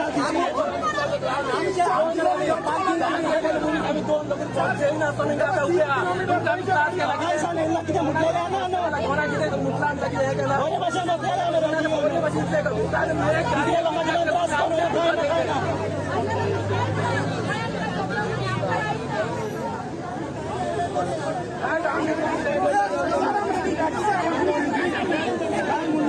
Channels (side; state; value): both; identical; correlation 1.00